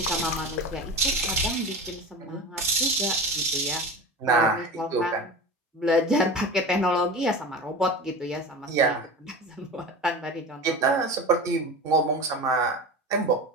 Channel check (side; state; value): both; normal; correlation 0.30